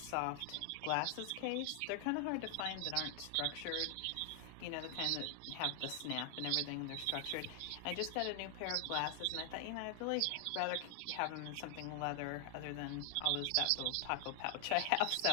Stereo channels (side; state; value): both; different; correlation 0.00